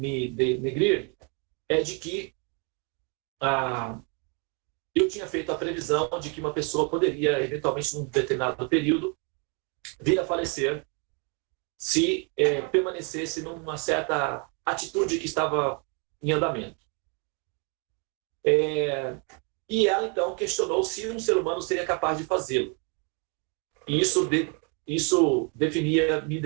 denegrir é de que eu tinha feito a previsão de que uma pessoa poderia, eventualmente, num determinado período, vir a falecer se permanecesse numa certa atitude que estava em andamento. E ela, então, questionou se um ser humano seria capaz de fazê-lo. E isso me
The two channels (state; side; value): quieter; left; 35.6 dB